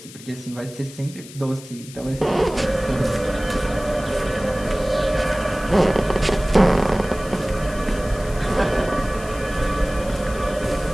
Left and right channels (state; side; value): noise; left; hiss, 18 dB below the sound